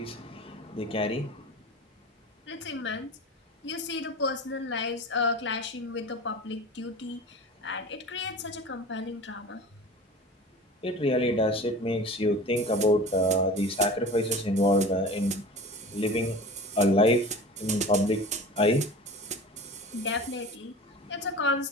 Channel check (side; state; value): both; normal; correlation 0.36